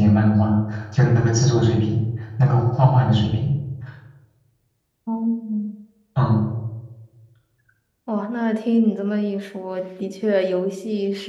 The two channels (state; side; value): identical; both; correlation 1.00